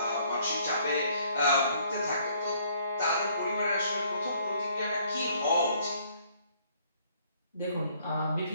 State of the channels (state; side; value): inverted; both; correlation -0.63